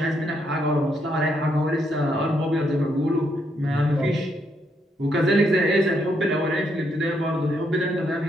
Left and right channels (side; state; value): both; normal; correlation 0.76